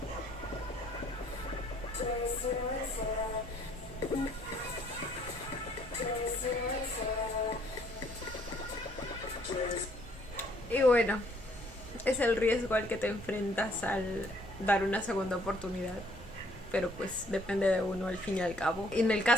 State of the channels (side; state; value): both; normal; correlation 0.63